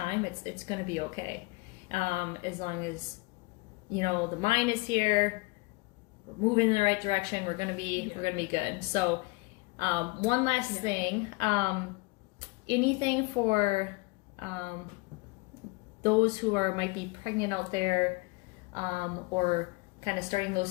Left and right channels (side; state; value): right; quieter; 24.6 dB